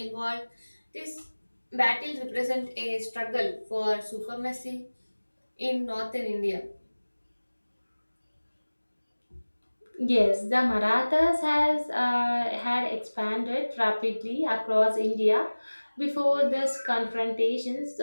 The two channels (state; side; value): inverted; both; correlation -1.00